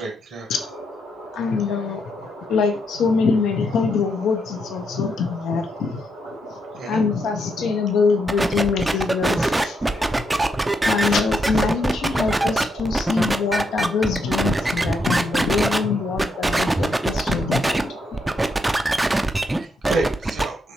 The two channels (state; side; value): normal; both; correlation 0.79